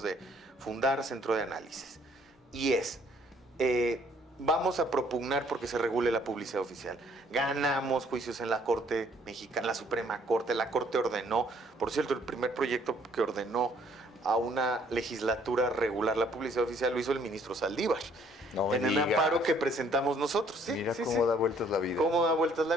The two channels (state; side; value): normal; both; correlation 0.62